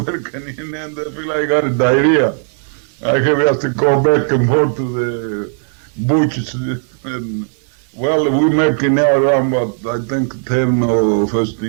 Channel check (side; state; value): left; silent; 65 dB below the other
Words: in there, I feel like I got a diarrhea. I have to go back and forth to butchers. And, well, we making now around about, I think, $10 or